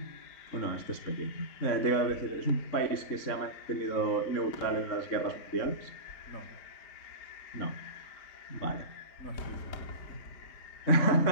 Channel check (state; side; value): late; right; 3.7 ms